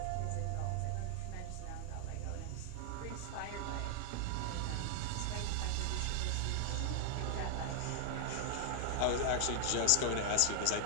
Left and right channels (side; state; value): both; different; correlation 0.00